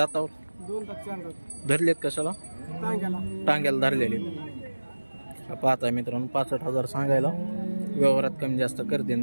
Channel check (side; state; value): both; inverted; correlation -1.00